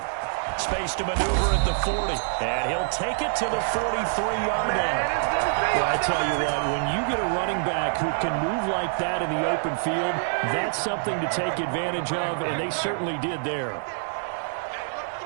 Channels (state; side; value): silent; left; digital silence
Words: Space to maneuver at the 40, and he'll take it to the 43-yard line. Well, I tell you what, when you get a running back who can move like that in the open field, that's something to take advantage of, and they certainly did there.